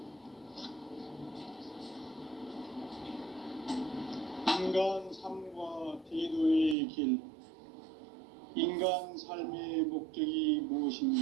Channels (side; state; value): left; drops out; at 6.8 s